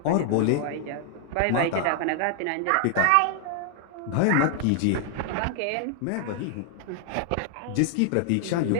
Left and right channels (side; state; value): both; different; correlation 0.00